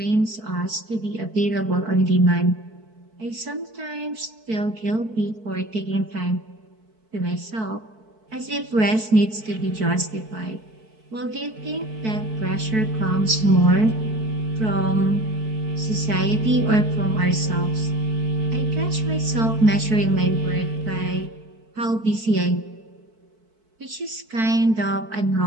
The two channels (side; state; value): left; late; 4.6 ms